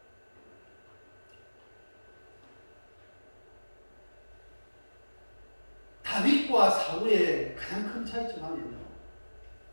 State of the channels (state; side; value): inverted; both; correlation -1.00